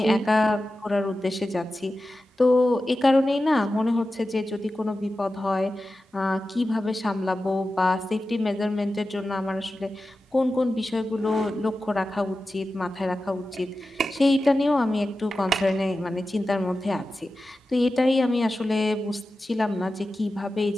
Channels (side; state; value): both; normal; correlation 0.93